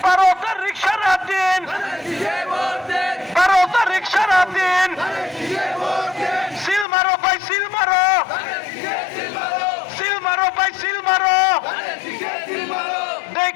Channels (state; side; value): drops out; right; at 6.9 s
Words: ভারতের রিক্সারা দিন, ভারতের রিক্সারা দিন, সিল মারো ভাই সিল মারো, সিল মারো ভাই সিল মারো,